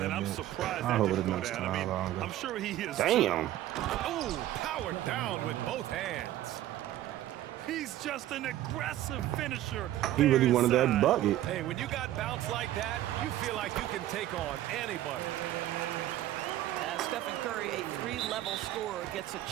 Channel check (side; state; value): left; quieter; 13.8 dB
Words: And I'm bitch. surprised I'll hold that it didn't go next down. time I mean, longer. I'm sure he is. Damn. Oh, powered down with both hands. He's just an aggressive finisher. He really wanted that bucket. Hey, when you got bounce like that, you feel like you can take on anybody. Stephen Curry, a 3-level scorer, gets a